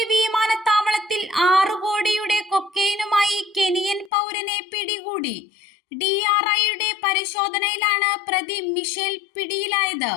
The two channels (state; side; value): drops out; right; at 4.1 s